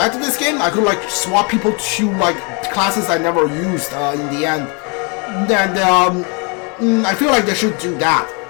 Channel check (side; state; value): right; quieter; 33.3 dB